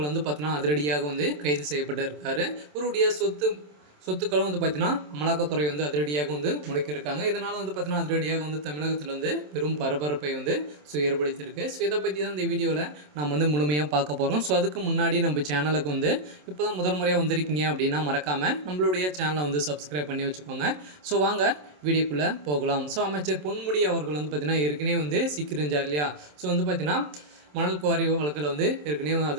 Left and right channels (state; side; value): late; left; 27 ms